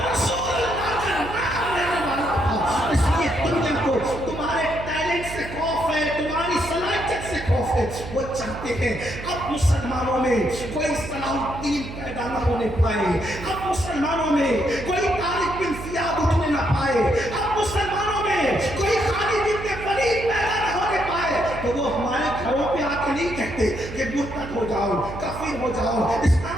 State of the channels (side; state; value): right; noise; hum, 10 dB below the sound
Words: رسول اللہ کا نام لینے والا تھا۔ اس لیے دنیا کو تمہارے ٹیلنٹ سے خوف ہے، تمہاری صلاحیت سے خوف ہے۔ وہ چاہتے ہیں اب مسلمانوں میں کوئی صلاح الدین پیدا نہ ہونے پائے، اب مسلمانوں میں کوئی طارق بن زیاد اٹھنے نہ پائے، اب مسلمانوں میں کوئی خالد بن ولید پیدا نہ ہونے پائے۔ تو وہ ہمارے گھروں پہ آ کے نہیں کہتے کہ مرتد ہو جاؤ، کافر ہو جاؤ،